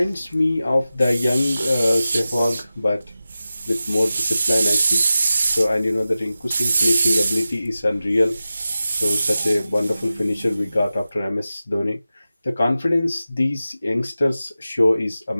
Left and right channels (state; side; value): inverted; both; correlation -0.94